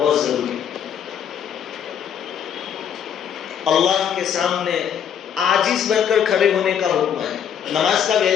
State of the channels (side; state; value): right; quieter; 8.6 dB